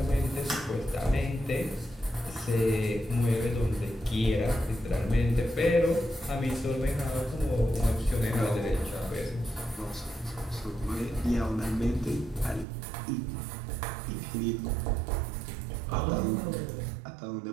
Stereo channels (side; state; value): left; drops out; at 12.7 s